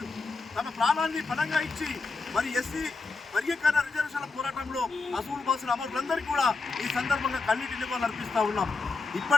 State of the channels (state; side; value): quieter; right; 3.9 dB